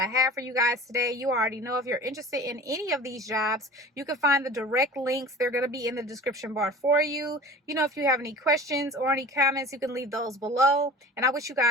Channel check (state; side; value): normal; both; correlation 0.40